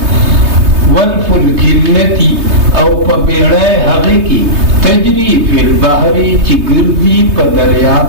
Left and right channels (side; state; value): left; late; 3.2 ms